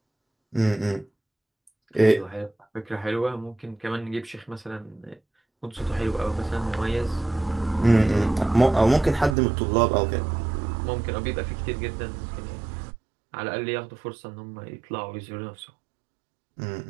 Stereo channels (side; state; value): left; drops out; at 9.3 s